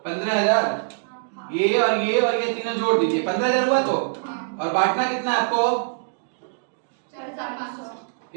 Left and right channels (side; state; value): left; silent; 63 dB below the other